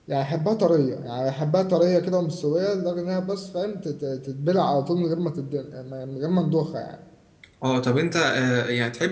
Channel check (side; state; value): both; identical; correlation 1.00